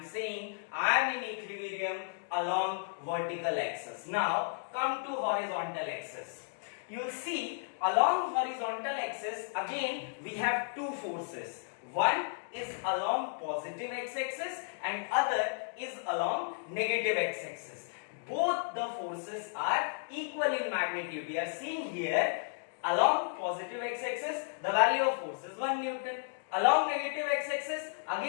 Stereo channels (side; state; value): right; silent; digital silence